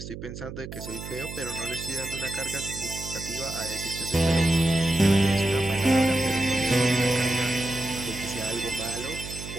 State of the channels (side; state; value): right; noise; hum, 10 dB below the sound